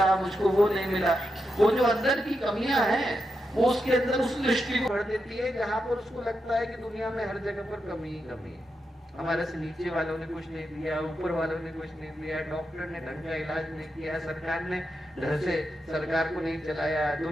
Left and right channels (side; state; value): both; normal; correlation 0.86